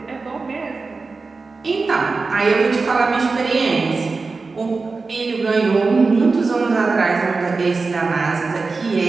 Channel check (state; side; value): quieter; left; 4.1 dB